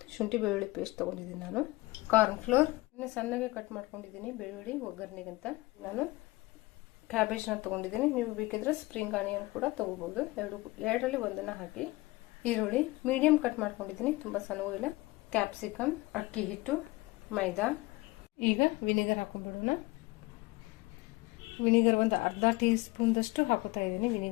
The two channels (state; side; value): quieter; right; 21.4 dB